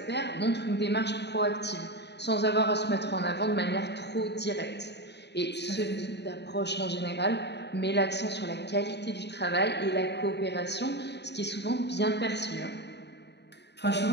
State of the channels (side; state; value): right; late; 0.50 ms